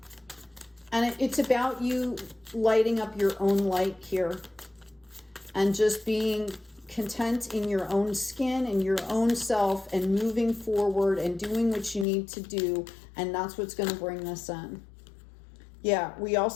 And it's about you lighting up your own light here and just being content in your own skin and your own self and moving forward and doing what you need to do. And that's what's going to bring this in. Yeah, we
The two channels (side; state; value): right; drops out; at 12.1 s